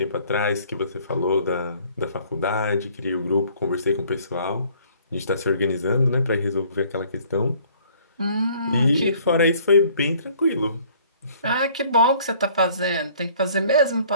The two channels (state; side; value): inverted; both; correlation -0.57